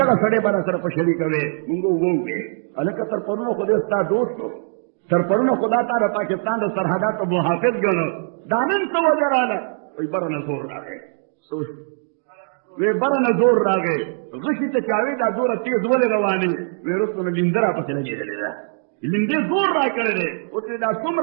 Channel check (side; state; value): left; silent; digital silence